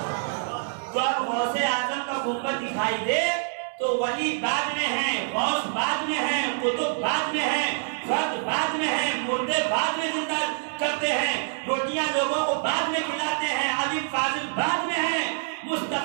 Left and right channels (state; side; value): silent; left; digital silence